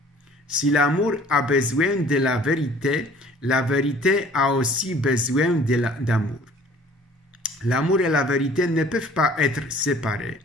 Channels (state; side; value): normal; both; correlation 0.52